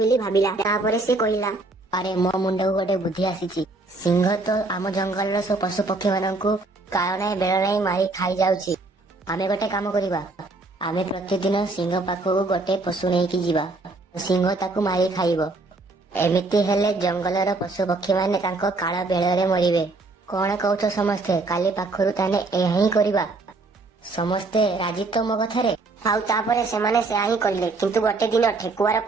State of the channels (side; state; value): left; quieter; 3.3 dB